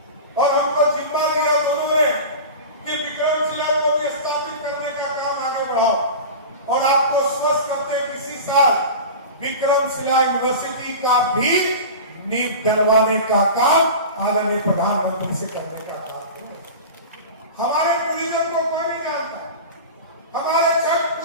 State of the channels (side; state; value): both; inverted; correlation -0.31